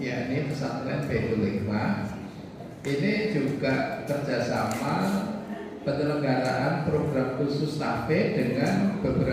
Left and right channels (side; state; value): both; identical; correlation 1.00